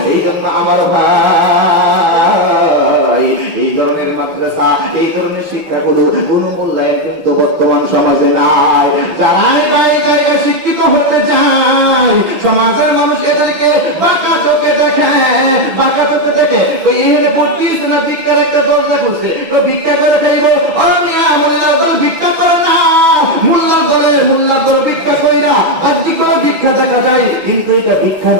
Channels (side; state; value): left; late; 6.0 ms